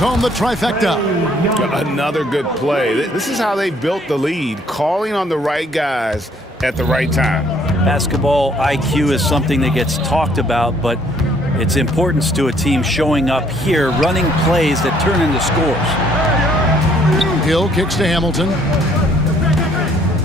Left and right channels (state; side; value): normal; both; correlation 0.63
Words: the trifecta. Another good play. This is how they built the lead, calling on the right guys at the right time. Basketball IQ is something that gets talked about, but its importance to a team showing up here, running plays that turn into scores. Hill kicks to Hamilton.